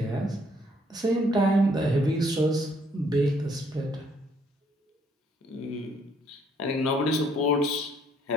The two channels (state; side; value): normal; both; correlation 0.67